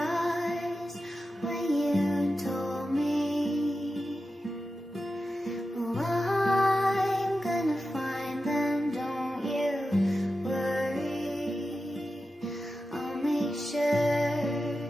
when you told me. Well, I'm gonna find them, don't you worry. I'll make sure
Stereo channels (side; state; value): both; normal; correlation 0.92